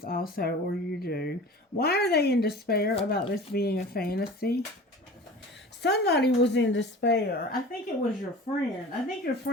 also, or you do. Why are they in despair about this being a fantasy? Somebody was in despair. I think it was your friend. I think your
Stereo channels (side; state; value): both; normal; correlation 0.39